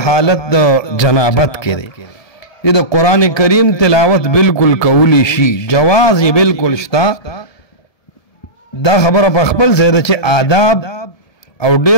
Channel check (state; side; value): late; right; 1.7 ms